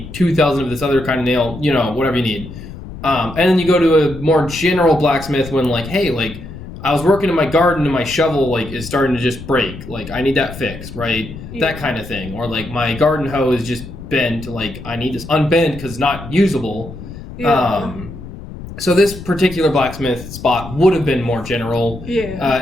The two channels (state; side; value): noise; left; rumble, 12 dB below the sound